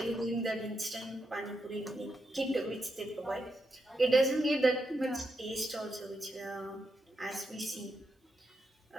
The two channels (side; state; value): both; normal; correlation 0.84